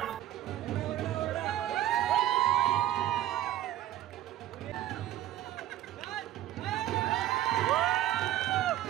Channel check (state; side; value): quieter; left; 13.1 dB